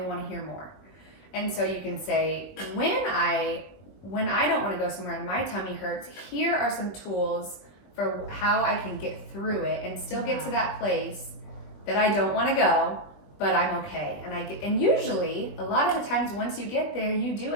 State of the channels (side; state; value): right; late; 20 ms